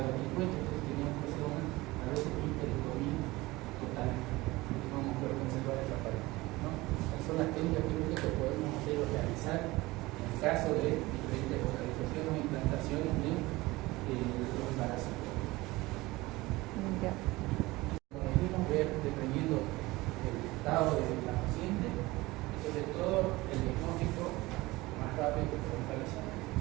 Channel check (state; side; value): quieter; left; 20.4 dB